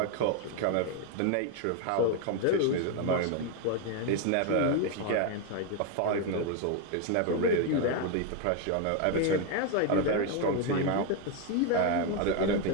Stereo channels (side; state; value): both; different; correlation 0.01